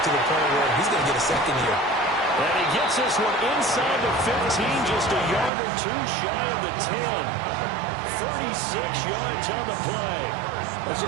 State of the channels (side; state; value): left; drops out; at 5.5 s